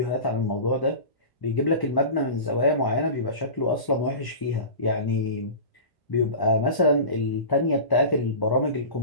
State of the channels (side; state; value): right; late; 1.0 ms